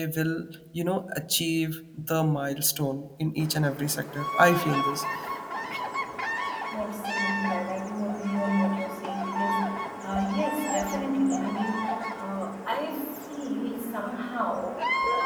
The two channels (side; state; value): both; identical; correlation 1.00